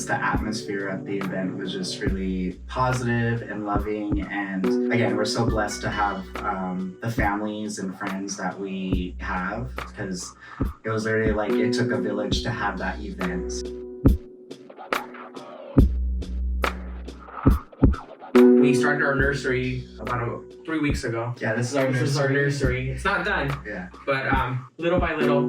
the atmosphere at the event was just really positive and loving. And again, we're so blessed to have the families and friends that we have, because it was literally it took a village to have that event. We started our nursery about 3 weeks ago. Yeah, this is our nursery. This is our nursery. It's not done. Yeah. But little by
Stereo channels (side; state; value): both; identical; correlation 1.00